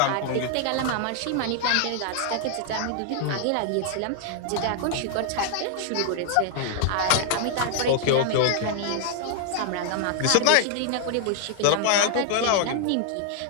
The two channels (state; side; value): different; both; correlation 0.00